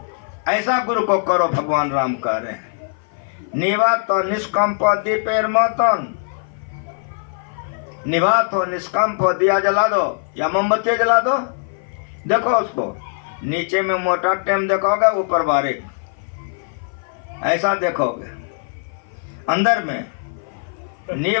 ऐसा गुरु को करो, भगवान राम कह रहे हैं। निवात तो निष्कंप दीपेर मतन। निवात हो निष्कंप हो, दिया जला दो या मोमबत्ती जला दो। देखो उसको, नीचे में मोटा टेम देखोगे, ऊपर बारीक, ऐसा देखोगे। अंदर में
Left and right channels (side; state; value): right; silent; 55 dB below the other